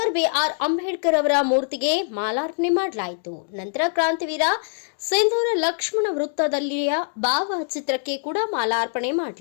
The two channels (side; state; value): right; silent; digital silence